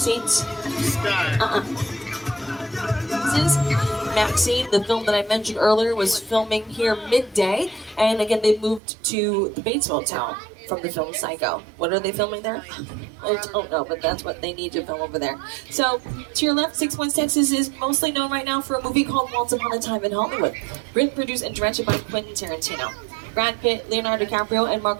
This is Maxine. The film that I mentioned earlier was filming here midday, and again, they moved to the Bates Motel from the film Psycho. What are they filming there? I don't know, but that's what they need to film over there. So, to your left, 6 Points, Texas is mostly known right now for a movie called Once Upon a Time in Hollywood. Written, produced, and directed by Quentin Tarantino. Brad Pitt, Leonardo DiCaprio, and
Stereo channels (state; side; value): drops out; left; at 8.8 s